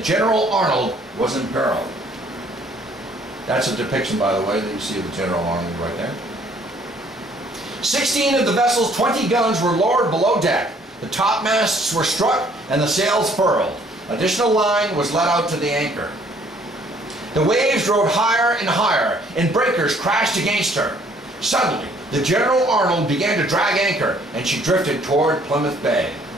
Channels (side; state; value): both; normal; correlation 0.61